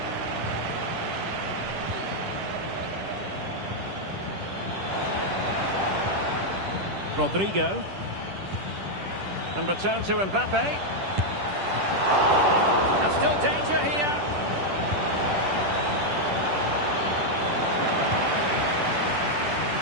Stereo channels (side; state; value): left; late; 10 ms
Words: Rodrigo. And return to Mbappe. And still danger here.